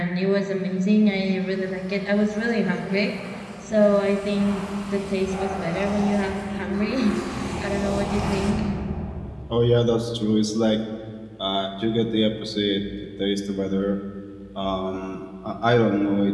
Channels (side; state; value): both; identical; correlation 1.00